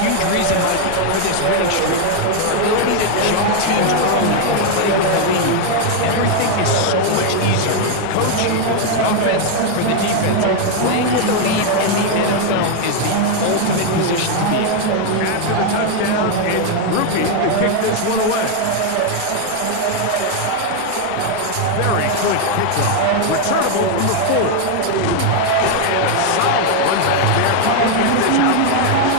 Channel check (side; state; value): both; different; correlation 0.01